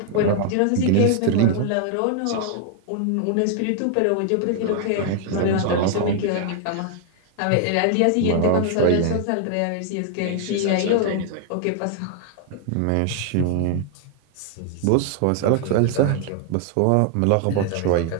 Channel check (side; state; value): both; different; correlation 0.00